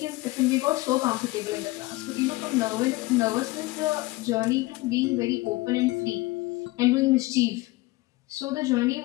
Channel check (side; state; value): right; quieter; 20.7 dB